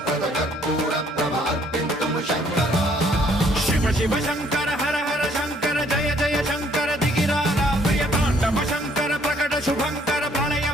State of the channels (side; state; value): both; normal; correlation 0.64